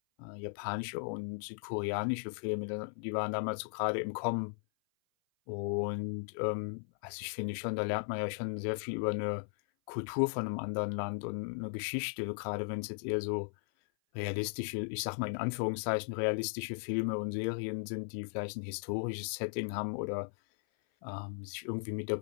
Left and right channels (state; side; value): silent; right; 53 dB below the other